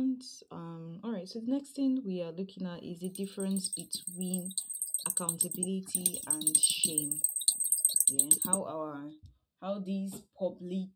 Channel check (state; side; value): identical; both; correlation 1.00